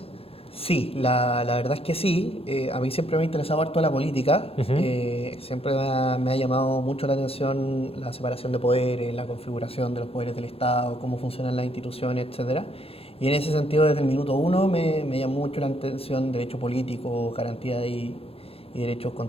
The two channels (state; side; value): late; right; 0.28 ms